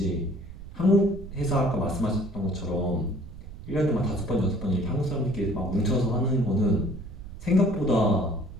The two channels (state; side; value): noise; right; rumble, 13 dB below the sound